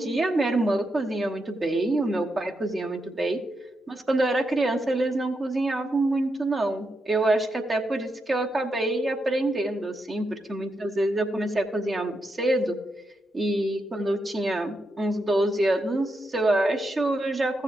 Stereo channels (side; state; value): both; normal; correlation 0.84